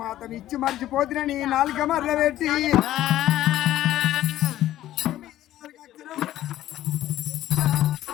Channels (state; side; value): quieter; right; 13.6 dB